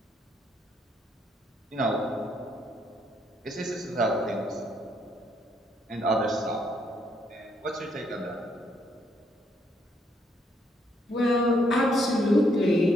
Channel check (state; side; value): normal; both; correlation 0.72